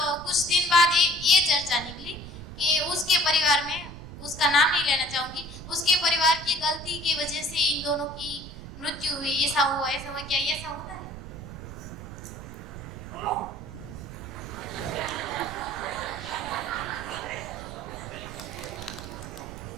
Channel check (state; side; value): noise; right; rumble, 12 dB below the sound